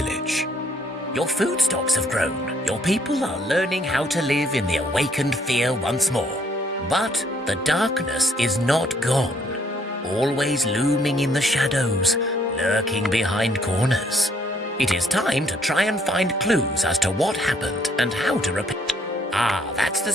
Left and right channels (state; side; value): normal; both; correlation 0.67